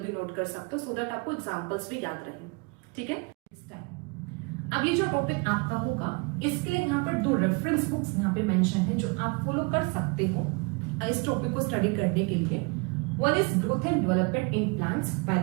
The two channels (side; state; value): left; quieter; 30.8 dB